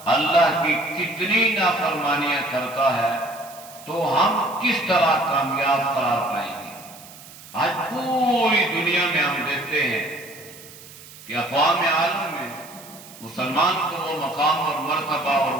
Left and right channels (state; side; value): noise; right; hiss, 19 dB below the sound